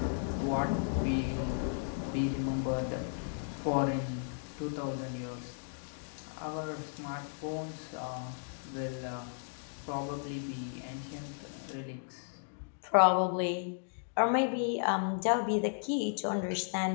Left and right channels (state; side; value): silent; right; digital silence